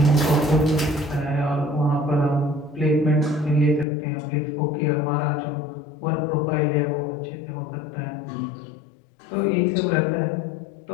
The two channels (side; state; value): right; drops out; at 3.9 s